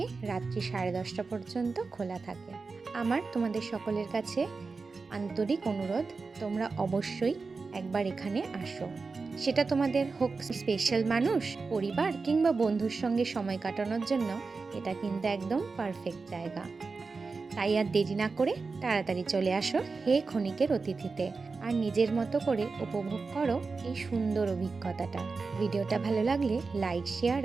রাত্রি 10:30 পর্যন্ত খোলা থাকে। আমার তোমাদের সকলের কাছে আন্তরিক অনুরোধ, তোমরা অবশ্যই একবার এখানে আসো। সেটা তোমাদের হোক স্পেশাল মানুষ, পরিবার কিংবা বন্ধুর সঙ্গে সময় কাটানোর জন্য এটা কিন্তু একদম পারফেক্ট জায়গা। তাই আর দেরি না করে তাড়াতাড়ি চলে আসো হে ক্ষণিকের অতিথিতে, আর নিজের মতো করে উপভোগ করো এই সুন্দর অভিজ্ঞতাটা। ভিডিওটা ভালো লাগলে লাইক, শেয়ার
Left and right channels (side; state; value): left; quieter; 4.3 dB